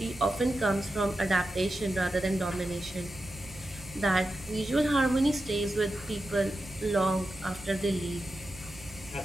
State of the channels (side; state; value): right; noise; hum, 19 dB below the sound